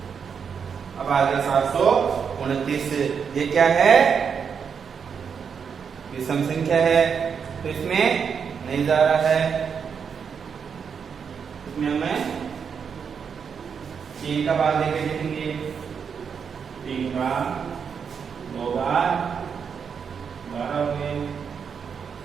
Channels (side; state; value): left; quieter; 6.6 dB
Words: अब आगे 729। ये क्या है, विषम संख्या है, तो इसमें नहीं जा रहा है, इसमें हमें 3 का भाग लेके लिखेंगे, 3 का 2 बार 12 हो गए,